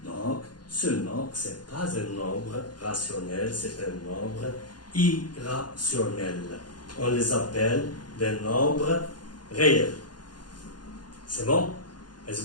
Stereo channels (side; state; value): right; late; 0.70 ms